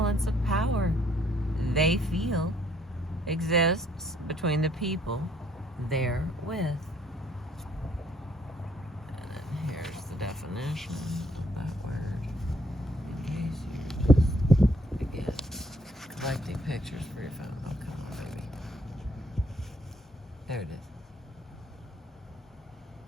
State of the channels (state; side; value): normal; both; correlation 0.66